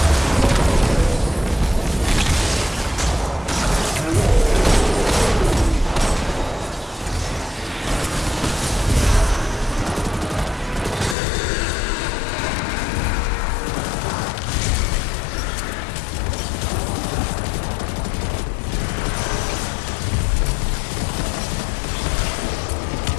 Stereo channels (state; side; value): drops out; right; at 11.2 s